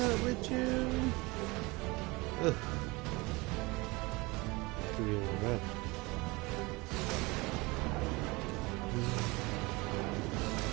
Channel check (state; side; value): quieter; left; 24.0 dB